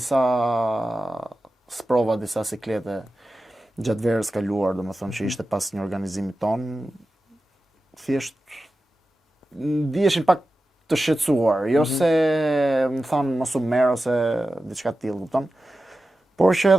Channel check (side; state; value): both; normal; correlation 0.93